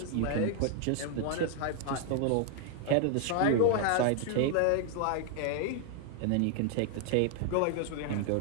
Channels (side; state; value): both; different; correlation 0.00